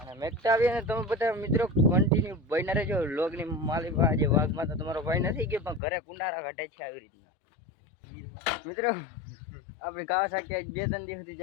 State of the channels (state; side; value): drops out; right; at 5.8 s